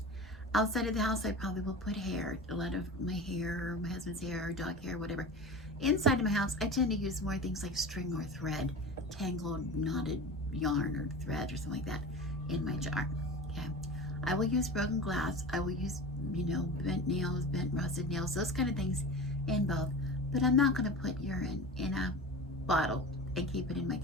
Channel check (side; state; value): both; normal; correlation 0.32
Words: outside of the house, I probably will put hair, a lot of my hair, my husband's hair, dog hair, whatever. Inside of my house, I tend to use more things like string or thread, tangled, knotted yarn or thread or something like that in my jar. Okay. I will use broken glass. I will use, bent nails, bent rusted nails, those kind of things in both. But I'm not going to put urine in a bottle and keep it in my